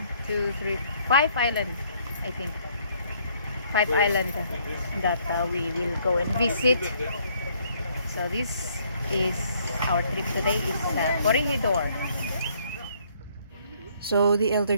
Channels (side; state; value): both; inverted; correlation -0.65